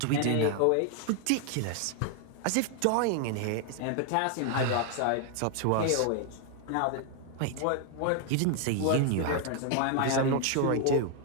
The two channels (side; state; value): both; different; correlation 0.00